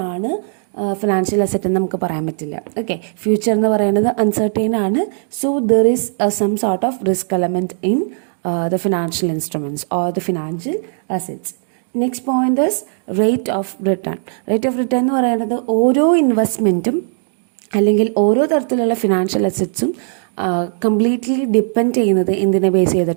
ഫിനാൻഷ്യൽ അസറ്റ് എന്ന് നമുക്ക് പറയാൻ പറ്റില്ല. ഓക്കെ, ഫ്യൂച്ചർ എന്ന് പറയുന്നത് അൺസർട്ടൈൻ ആണ്. So there is some sort of risk element in the financial instruments or the financial assets. Next point is rate of return. Rate of return എന്ന് പറയുന്നത് ഓരോ ഇൻവെസ്റ്റ്മെൻറ്റും അല്ലെങ്കിൽ ഓരോ തരത്തിലുള്ള ഫിനാൻഷ്യൽ അസറ്റ്സും കംപ്ലീറ്റ്ലി ഡിപ്പെൻഡ് ചെയ്യുന്നത് എന്തിനെ ബേസ്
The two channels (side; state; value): left; silent; digital silence